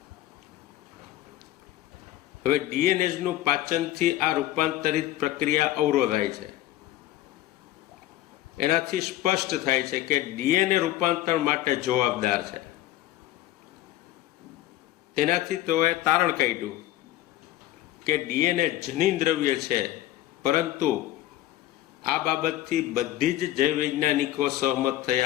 હવે ડીએનએનું પાચનથી આ રૂપાંતરિત પ્રક્રિયા અવરોધાય છે. એનાથી સ્પષ્ટ થાય છે કે ડીએનએ રૂપાંતર માટે જવાબદાર છે. તેનાથી તેઓએ તારણ કાઢ્યું કે ડીએનએ જનીન દ્રવ્ય છે, પરંતુ આ બાબતથી બધી જ જૈવ વૈજ્ઞાનિકો સહમત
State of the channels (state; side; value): quieter; right; 14.5 dB